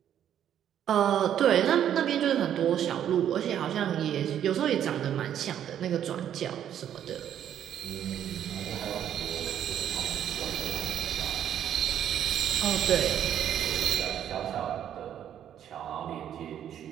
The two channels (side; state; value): left; quieter; 10.1 dB